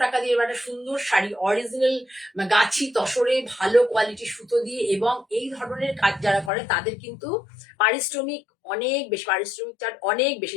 টাকা দিয়ে একটা সুন্দর শাড়ি, অরিজিনাল গাছি তসরে ভালো কোয়ালিটির সুতো দিয়ে, এবং এই ধরনের কাজ যারা করে তাদের কিন্তু পারিশ্রমিক অনেক বেশি, পারিশ্রমিক চার্জ অনেক বেশি,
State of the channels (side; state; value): right; drops out; at 6.5 s